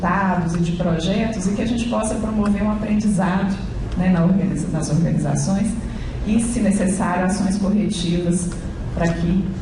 e de projetos e que a gente possa promover um aprendizado, né, nas organizações e, se necessário, ações corretivas para que,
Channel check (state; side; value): identical; both; correlation 1.00